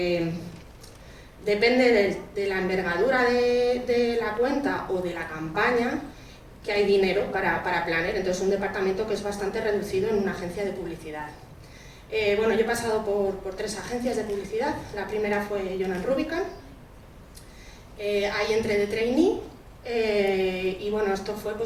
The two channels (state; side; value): identical; both; correlation 1.00